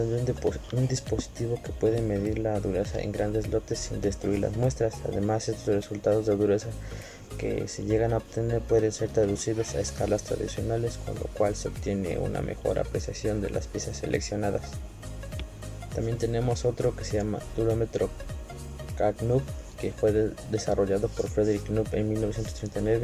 de un dispositivo que puede medir la dureza en grandes lotes sin destruir las muestras. Además, estos resultados de dureza que se llegan a obtener pueden ser traducidos a escalas tradicionales, con lo cual se obtiene una mejor apreciación de las piezas seleccionadas. También tenemos otro que se llama durómetro Knup, que fue desarrollado por Frederick Knup en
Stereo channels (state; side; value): identical; both; correlation 1.00